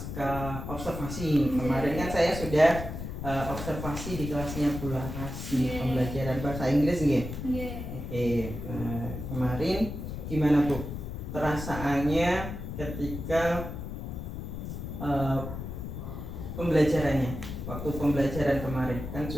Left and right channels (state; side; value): noise; left; rumble, 7 dB below the sound